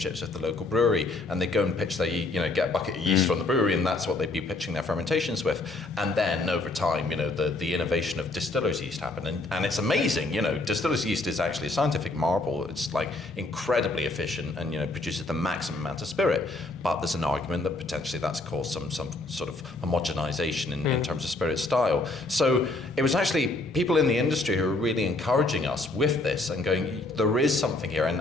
with the local brewery, and they'd go and pitch their, get a bucket of yeast from the brewery, and that's what they'd be pitching their fermentations with. And then over time, the innovation of distillers yeast happened, and it's amazing. Distillers yeast is actually a scientific marvel. It's like incredibly efficient and produces the maximum amount of spirit. But there's an argument that potentially that's caused some sort of homogenization in terms of spirit style. So it was actually people in the industry who were really encouraging us with this and going, there is something here.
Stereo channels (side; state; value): right; quieter; 3.0 dB